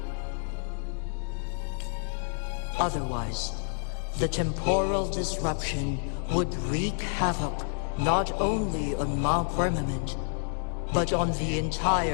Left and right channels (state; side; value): silent; right; 59 dB below the other